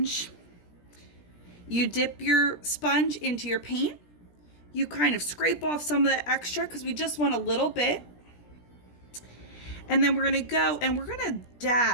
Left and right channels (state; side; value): late; right; 17 ms